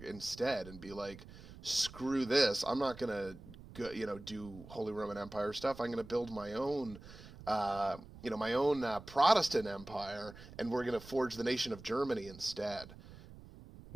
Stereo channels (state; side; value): noise; right; rumble, 17 dB below the sound